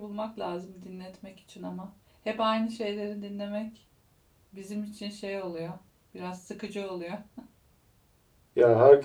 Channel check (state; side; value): identical; both; correlation 1.00